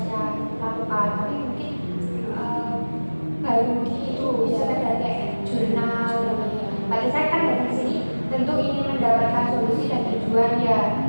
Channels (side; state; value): both; inverted; correlation -1.00